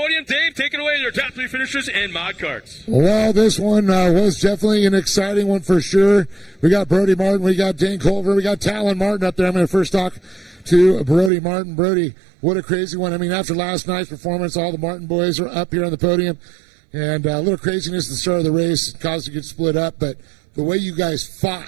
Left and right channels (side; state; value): left; drops out; at 11.3 s